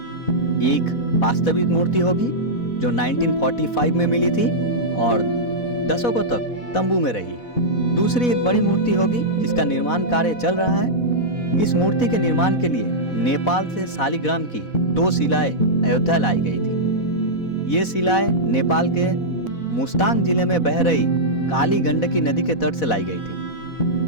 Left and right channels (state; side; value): late; right; 4.1 ms